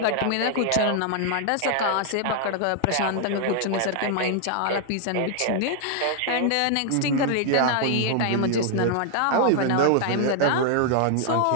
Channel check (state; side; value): different; both; correlation 0.00